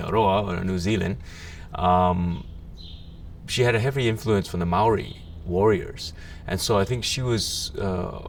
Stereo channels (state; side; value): identical; both; correlation 1.00